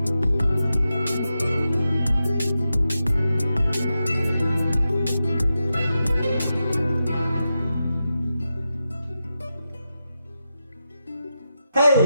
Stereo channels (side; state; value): both; inverted; correlation -0.89